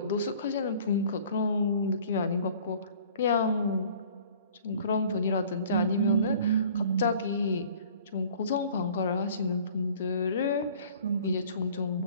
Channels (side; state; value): both; inverted; correlation -0.51